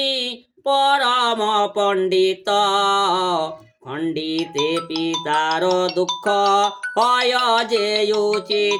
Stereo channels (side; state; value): both; identical; correlation 1.00